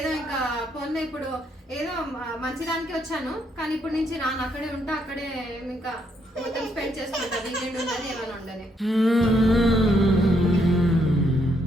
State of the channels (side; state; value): both; normal; correlation 0.74